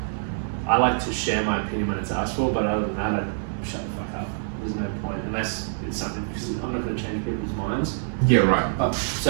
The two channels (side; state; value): left; silent; digital silence